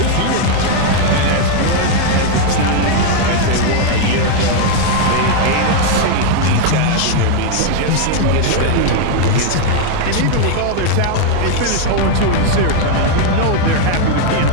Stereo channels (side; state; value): both; different; correlation 0.00